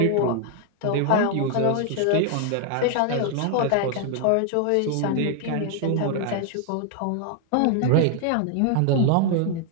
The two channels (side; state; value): both; different; correlation 0.00